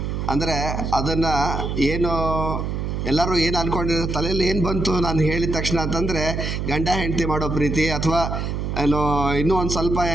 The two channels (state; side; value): noise; right; hum, 2 dB below the sound